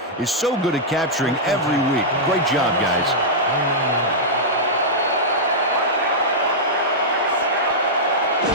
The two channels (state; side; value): normal; both; correlation -0.10